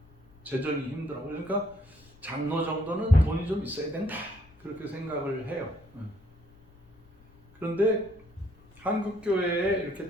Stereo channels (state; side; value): noise; left; rumble, 27 dB below the sound